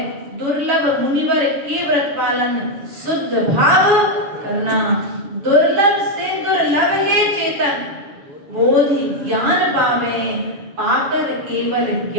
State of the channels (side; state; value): left; late; 7.1 ms